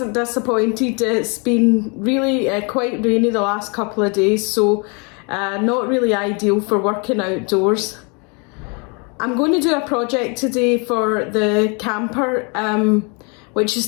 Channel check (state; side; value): quieter; right; 33.0 dB